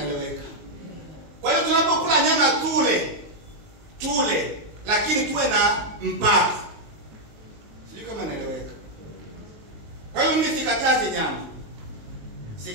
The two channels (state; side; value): late; left; 19 ms